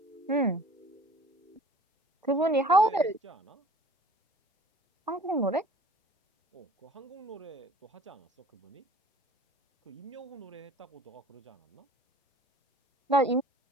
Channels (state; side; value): normal; both; correlation 0.48